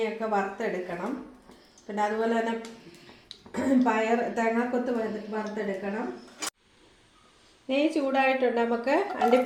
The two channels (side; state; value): both; identical; correlation 1.00